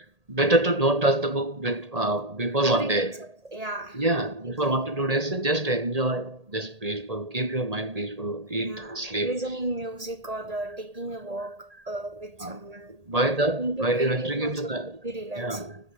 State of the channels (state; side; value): late; left; 1.8 ms